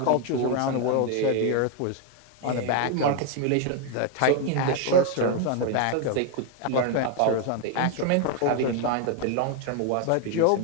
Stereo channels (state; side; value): different; both; correlation 0.01